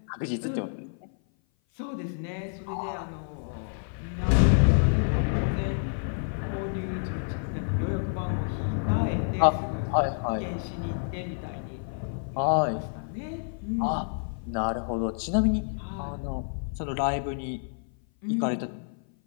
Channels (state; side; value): silent; right; 56 dB below the other